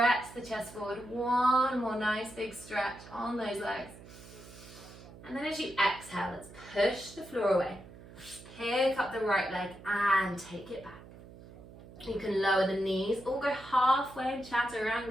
the chest forward. One more nice big stretch on those legs. And then as you exhale, let's push the floor away. Pick up the right leg and take it back. You can lower the knees or go halfway in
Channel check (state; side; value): noise; right; hum, 18 dB below the sound